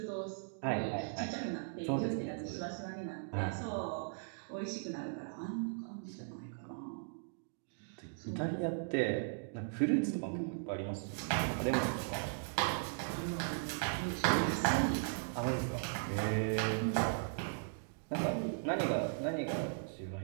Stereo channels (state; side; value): silent; left; digital silence